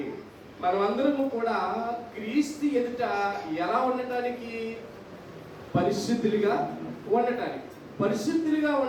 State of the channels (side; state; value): both; identical; correlation 1.00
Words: మనమందరము కూడా క్రీస్తు ఎదుట ఎలా ఉండటానికి? పరిశుద్ధులుగా